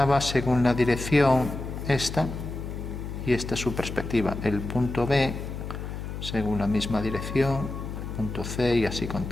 según la dirección esta, y esta es su perspectiva. El punto B según la misma dirección, el punto C, y así con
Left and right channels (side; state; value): left; noise; hum, 7 dB below the sound